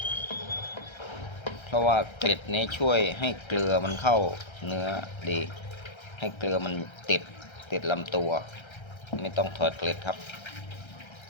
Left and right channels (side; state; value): right; late; 1.3 ms